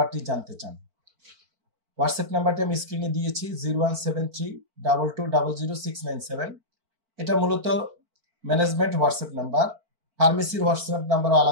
জানতে চান। হোয়াটসঅ্যাপ নাম্বারটি আমি স্ক্রিনে দিয়েছি, 017322000697। এটা মূলত ম্যানেজমেন্ট হোয়াটসঅ্যাপ নাম্বার। ফার্মেসির হোয়াটসঅ্যাপ নাম্বারও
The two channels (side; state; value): left; late; 4.5 ms